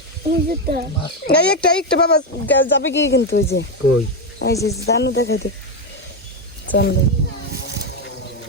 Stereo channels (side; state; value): both; normal; correlation 0.08